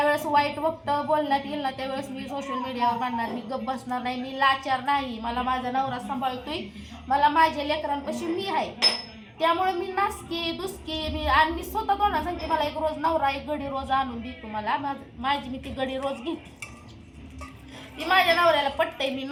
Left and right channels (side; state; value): both; identical; correlation 1.00